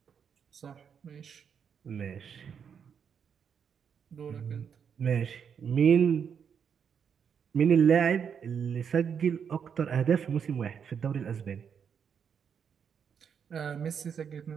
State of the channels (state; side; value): quieter; left; 7.3 dB